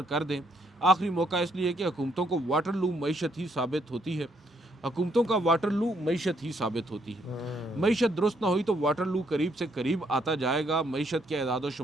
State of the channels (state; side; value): normal; both; correlation 0.72